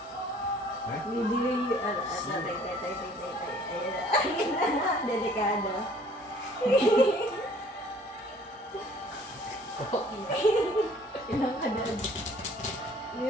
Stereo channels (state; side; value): normal; both; correlation 0.55